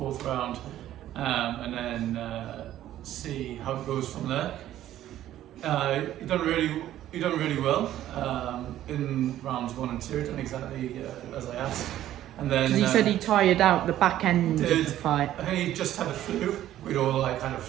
round, and then see how it goes from there. He done really well in rounds 1 and 2. Done exactly as I asked. And then because he said he tired out the back end of the fight. I think he just had a flu. We'd all had a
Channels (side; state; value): left; quieter; 12.8 dB